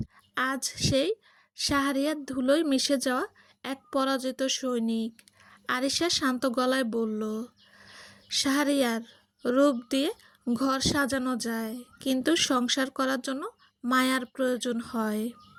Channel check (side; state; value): both; identical; correlation 1.00